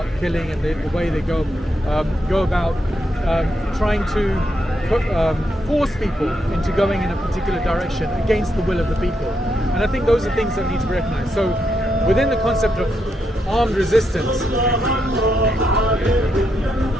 killing, and the way they go about trying to force people into going in a particular direction against the will of the people. And I think those are things that need to be recognized. So within the concept of armed resistance, is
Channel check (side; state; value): both; normal; correlation 0.81